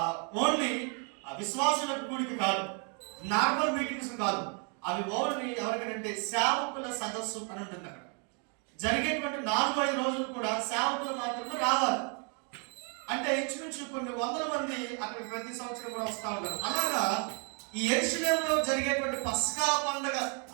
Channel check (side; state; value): left; quieter; 38.2 dB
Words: ఓన్లీ విశ్వాసులకు కూడికి కాదు, నార్మల్ మీటింగ్స్ కాదు, అవి ఓన్లీ ఎవరికంటే సేవకుల సదస్సు అని ఉంటుంది. అక్కడ జరిగేటువంటి 4-5 రోజులు కూడా సేవకులు మాత్రమే రావాలి. అంటే ఇంచుమించు కొన్ని వందల మంది అక్కడ ప్రతి సంవత్సరం కూడా వస్తూ ఉంటారు. అలాగా ఈ యెరూషలేములో జరిగేటువంటి పస్కా పండుగ